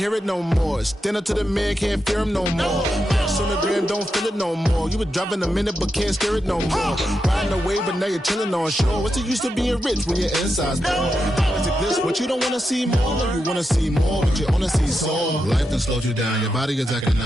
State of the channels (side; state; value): both; normal; correlation 0.87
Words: it no more. Stand up to the man, can't fear him no more. Sonogram don't feel it no more. You were driving a minute but can't steer it no more. Riding away but now you're chilling on shore. What's the use of being rich when your inside's poor? Is it this what you don't wanna see more? No, you wanna see more, but you wanna see soul. Life done slowed you down. Your body is acting